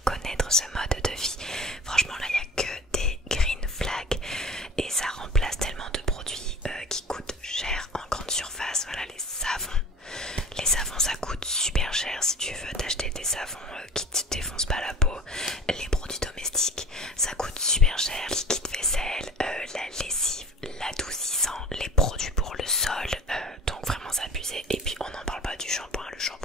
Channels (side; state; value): both; normal; correlation 0.40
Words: connaître ce mode de vie. Franchement là il n'y a que des green flags et ça remplace tellement de produits qui coûtent cher en grande surface. Voilà, les savons ça coûte super cher. Si tu veux t'acheter des savons qui te défoncent pas la peau, les produits domestiques ça coûte super cher. Liquide vaisselle, la lessive, l'adoucissant, les produits pour le sol, donc vraiment c'est abusé. Et puis on n'en parle pas du shampoing. Le